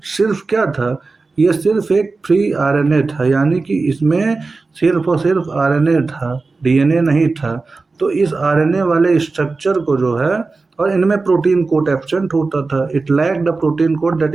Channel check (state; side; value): quieter; left; 3.9 dB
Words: सिर्फ क्या था? ये सिर्फ एक फ्री आरएनए था, यानी कि इसमें सिर्फ और सिर्फ आरएनए था, डीएनए नहीं था। तो इस आरएनए वाले स्ट्रक्चर को जो है, और इनमें प्रोटीन कोड एब्सेंट होता था। It lack the protein code that